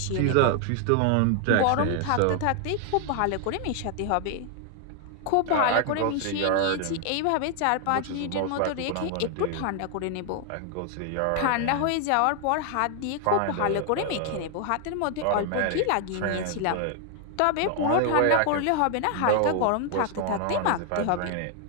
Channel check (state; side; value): different; both; correlation 0.00